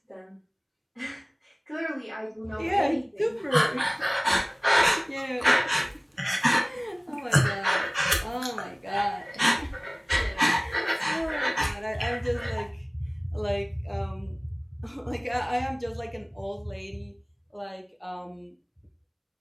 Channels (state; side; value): identical; both; correlation 1.00